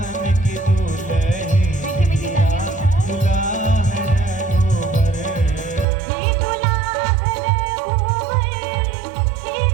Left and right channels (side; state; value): left; drops out; at 5.9 s